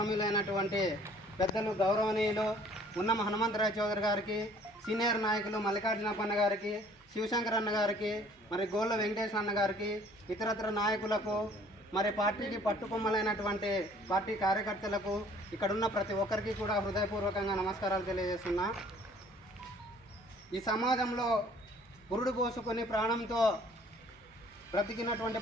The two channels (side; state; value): both; normal; correlation 0.56